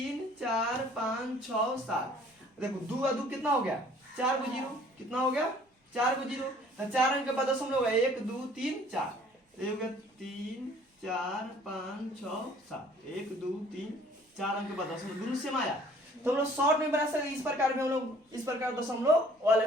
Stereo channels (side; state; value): both; normal; correlation 0.55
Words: 4 5 6 7। देखो 2 और 2 कितना हो गया 4 को 0 कितना हो गया 4 को 0, तो 4 अंक के बाद दशमलव है 1 2 3 4, ये हो गया 3 4 5 6 7 1 2 3 4 अंक के बाद दशमलव दोनों सेम आया। तो हम लोग शॉर्ट में बना सकते, इस प्रकार में हम लोग इस प्रकार दशमलव